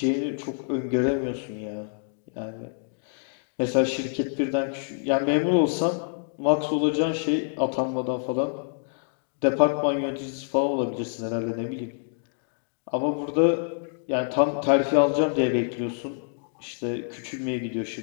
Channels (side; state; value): right; silent; digital silence